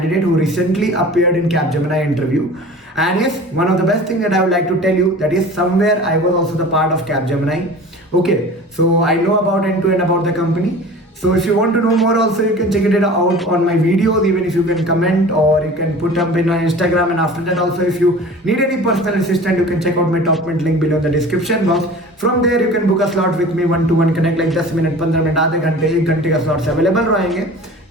who recently appeared in Capgemini interview. And yes, one of the best thing that I would like to tell you, that is somewhere I was also the part of Capgemini. Okay, so I know about end to end about the company. So if you want to know more also, you can check it out on my videos, even if you can comment or you can put up in my Instagram. And after that also, if you need any personal assistant, you can check out my top link below in the description box. From there you can book a slot with me, 1-to-1 connect, like 10 minute 15 minute आधे घंटे 1 घंटे का स्लॉट्स अवेलेबल रहेंगे.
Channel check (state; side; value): normal; both; correlation 0.40